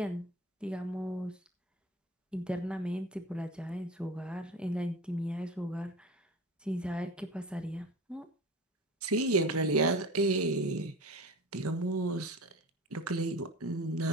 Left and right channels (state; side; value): normal; both; correlation 0.33